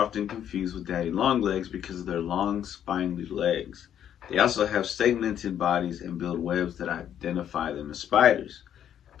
often confused with daddy longlegs because of their long, spiny legs. They also have segmented bodies and build webs that identify them as spiders.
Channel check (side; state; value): right; quieter; 9.8 dB